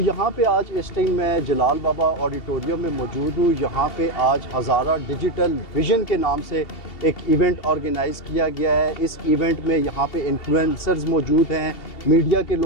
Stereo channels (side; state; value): right; late; 2.7 ms